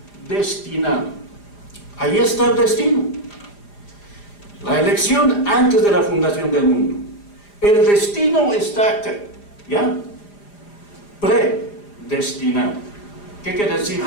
predestinado. Ahí está el destino. La elección antes de la fundación del mundo. El destino está acá, ¿ya? Predestinado. ¿Qué quiere decir?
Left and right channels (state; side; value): late; right; 4.9 ms